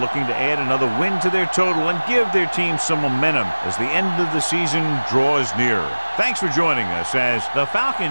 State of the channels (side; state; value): both; inverted; correlation -1.00